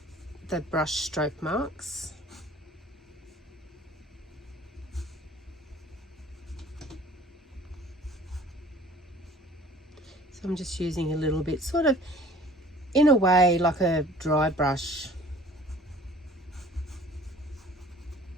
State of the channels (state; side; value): normal; both; correlation 0.49